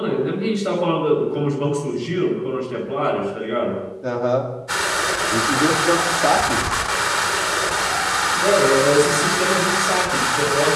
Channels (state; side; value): identical; both; correlation 1.00